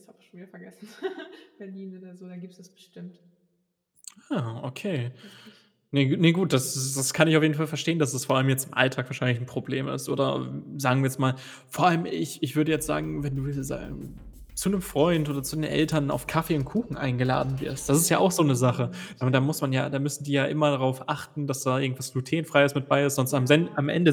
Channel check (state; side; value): identical; both; correlation 1.00